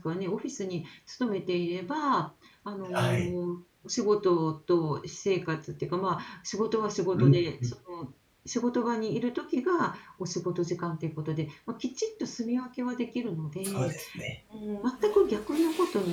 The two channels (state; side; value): identical; both; correlation 1.00